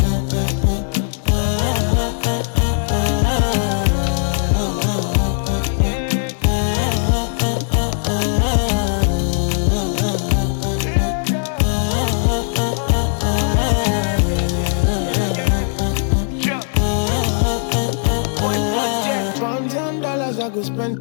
$1,000 I go spend.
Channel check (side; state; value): right; silent; digital silence